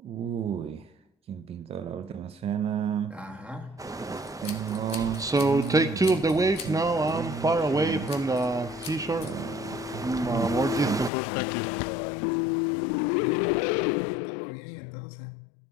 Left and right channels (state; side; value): drops out; right; at 11.1 s